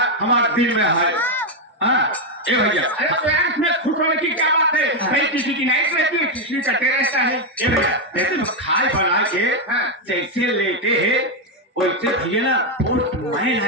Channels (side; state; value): both; normal; correlation 0.03